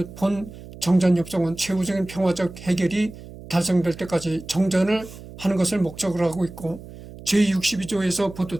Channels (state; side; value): noise; right; hum, 16 dB below the sound